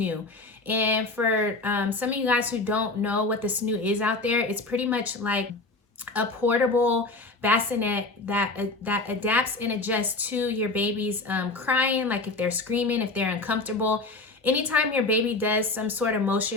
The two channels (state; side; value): quieter; right; 3.3 dB